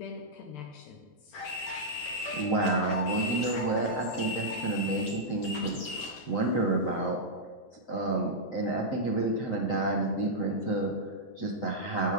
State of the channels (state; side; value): late; right; 11 ms